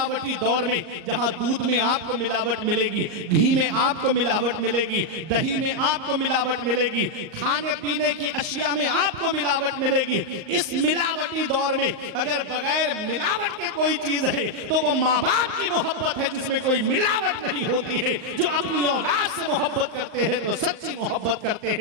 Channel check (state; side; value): late; left; 38 ms